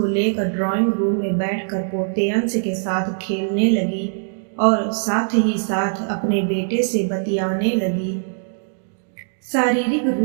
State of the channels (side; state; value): left; silent; digital silence